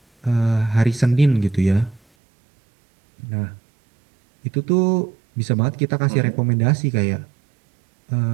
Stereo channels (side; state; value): left; drops out; at 2.0 s